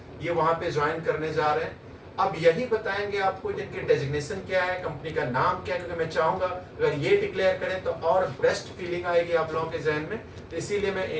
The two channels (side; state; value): both; identical; correlation 1.00